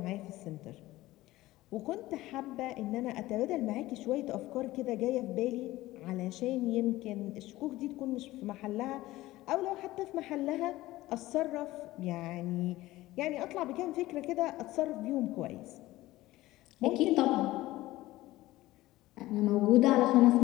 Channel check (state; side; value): quieter; right; 17.3 dB